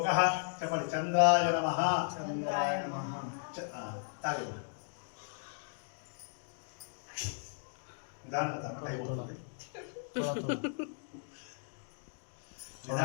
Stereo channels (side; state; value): right; silent; digital silence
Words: చెప్పండి చంద్రాయ నమః చంద్రాయ నమః తాగే నిదానంగా తాగండి టైం అవుతుంది